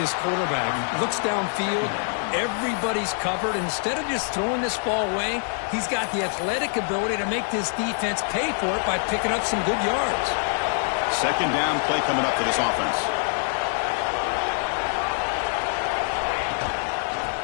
quarterback. Looks downfield, everybody's covered. Instead of just throwing this ball away, he's got the athletic ability to make this defense pay for it by picking up some good yards. 2nd down play coming up for this offense.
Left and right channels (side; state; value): right; silent; 56 dB below the other